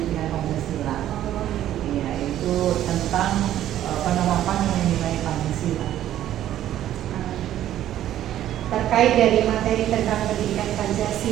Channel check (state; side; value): quieter; left; 12.2 dB